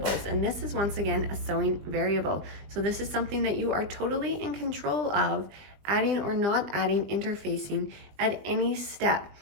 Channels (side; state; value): left; late; 20 ms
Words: And this is, once again, a sewing variable. So this is something that you are totally in control of, adding or not adding interfacing at any step.